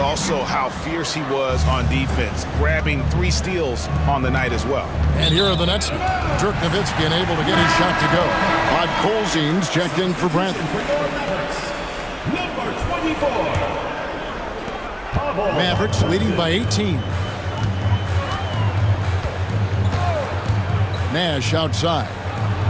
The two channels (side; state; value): both; identical; correlation 1.00